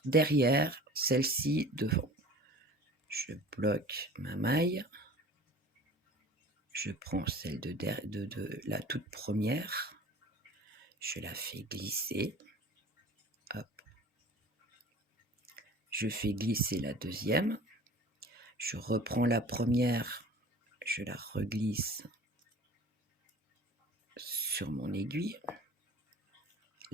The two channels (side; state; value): both; normal; correlation 0.43